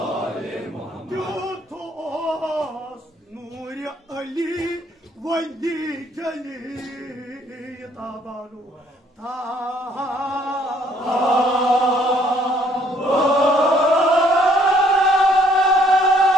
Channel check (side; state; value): both; normal; correlation 0.64